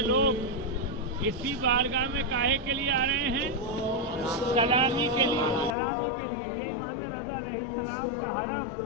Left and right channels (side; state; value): right; drops out; at 5.8 s